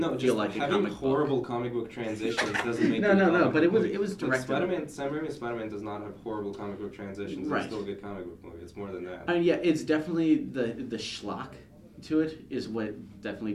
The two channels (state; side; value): identical; both; correlation 1.00